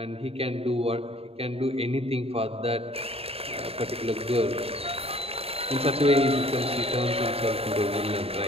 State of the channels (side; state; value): left; late; 0.28 ms